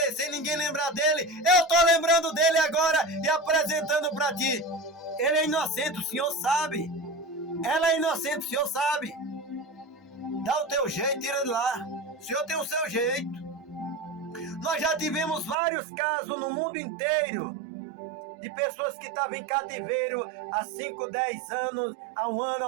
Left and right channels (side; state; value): left; drops out; at 15.6 s